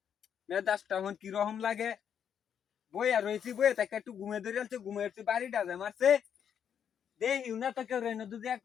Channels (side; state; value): right; quieter; 8.3 dB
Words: মেজাজটা এখন কিরকম লাগে বইয়া রয়েছি বইয়া তাকে একটু ঘুমে ধরে ঘুমেছি বাড়িটা মারছে দেখিও না তো কেউ রেনো যদি